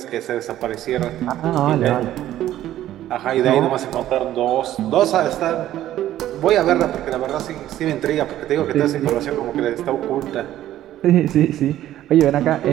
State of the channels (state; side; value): quieter; left; 13.0 dB